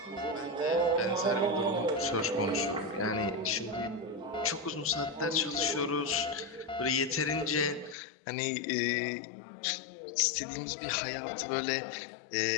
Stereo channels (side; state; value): right; drops out; at 8.0 s